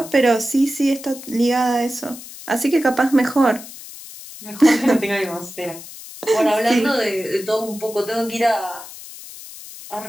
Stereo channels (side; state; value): left; noise; hiss, 15 dB below the sound